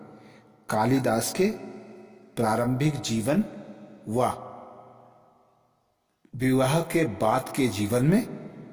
कालिदास के प्रारंभिक जीवन व विवाह के बाद के जीवन में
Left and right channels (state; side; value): identical; both; correlation 1.00